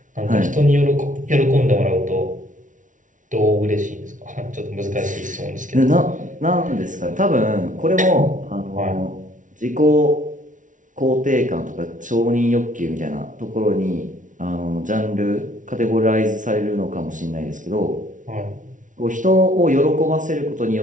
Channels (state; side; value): late; left; 0.37 ms